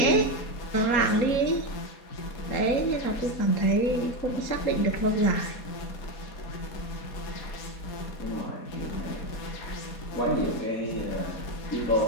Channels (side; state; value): right; late; 4.2 ms